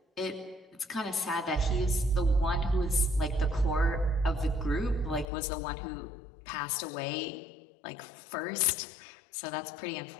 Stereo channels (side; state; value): right; drops out; at 5.2 s